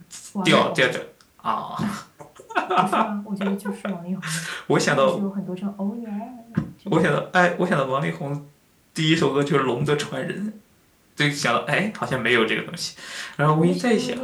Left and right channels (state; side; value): identical; both; correlation 1.00